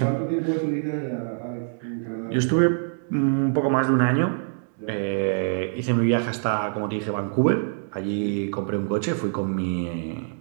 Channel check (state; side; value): silent; left; digital silence